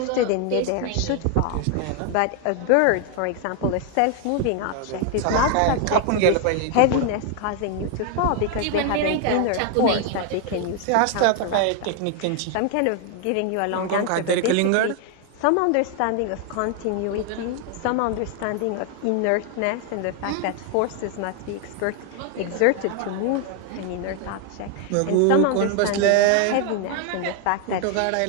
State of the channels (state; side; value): different; both; correlation 0.00